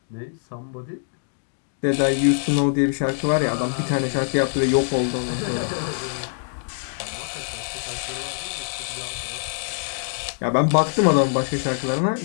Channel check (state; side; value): silent; right; digital silence